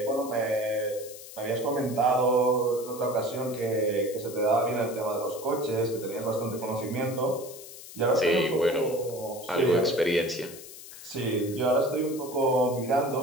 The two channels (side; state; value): left; noise; hiss, 15 dB below the sound